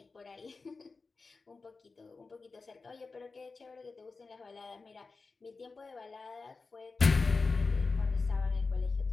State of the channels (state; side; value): quieter; right; 4.2 dB